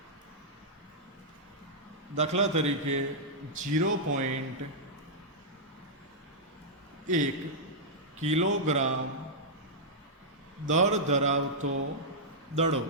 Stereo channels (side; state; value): both; normal; correlation -0.09